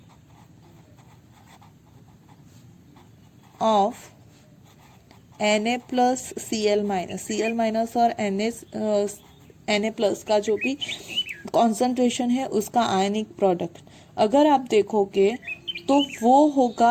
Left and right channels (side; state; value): both; identical; correlation 1.00